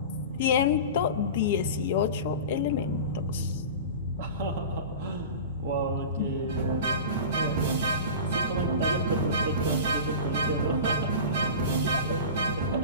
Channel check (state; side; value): inverted; both; correlation -0.32